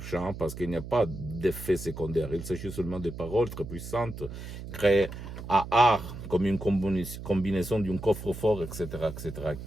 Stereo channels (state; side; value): noise; right; hum, 10 dB below the sound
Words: parce qu'il n'y a pas d'effet secondaire, il s'agit seulement de paroles très puissantes, créées à art, comme une combinaison d'un coffre-fort, etc.,